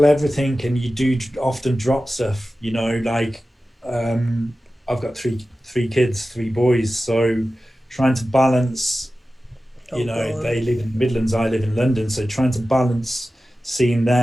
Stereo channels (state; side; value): normal; both; correlation 0.95